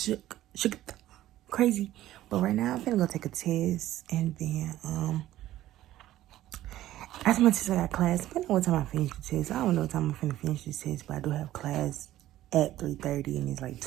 shook, crazy. But right now, I'm finna go take a test, and then, after my test, I got class. Depending on what time I finish the test. I don't know what time I'm finna finish this test, but I do have class at 3:30, and it's like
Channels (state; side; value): quieter; left; 14.2 dB